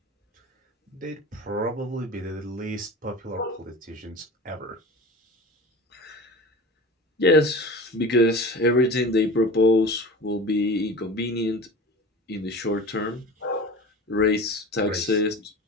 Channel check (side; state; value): both; normal; correlation 0.35